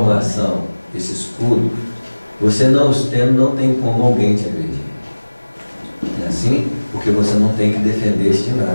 esse escudo, você não os tendo, não tem como alguém te agredir. É assim? Porque você não tem que defender-se de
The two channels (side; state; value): both; inverted; correlation -1.00